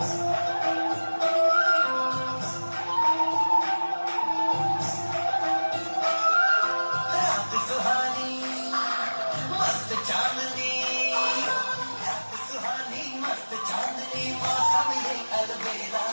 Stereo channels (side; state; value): both; inverted; correlation -1.00